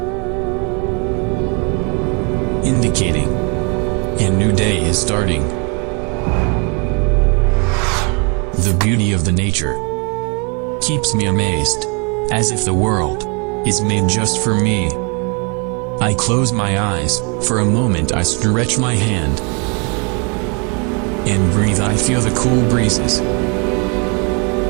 indicating a new day is starting. The beauty of the nature keeps me amazed, as if the world is made just for me. I close my eyes, for a moment I stretch my hand and breathe. I feel the cool breezes,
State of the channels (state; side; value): quieter; left; 34.3 dB